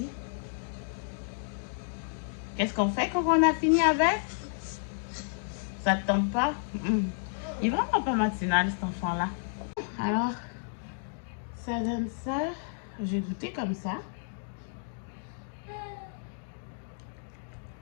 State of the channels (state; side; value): silent; right; digital silence